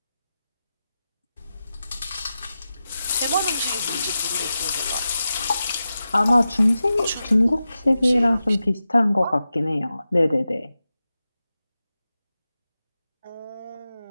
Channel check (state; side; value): inverted; both; correlation -0.92